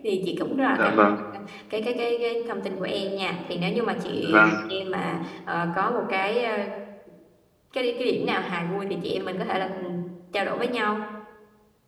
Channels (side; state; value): both; identical; correlation 1.00